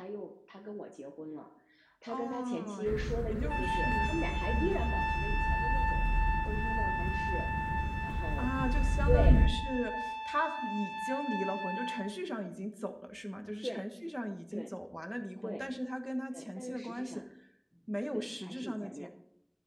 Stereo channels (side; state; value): both; identical; correlation 1.00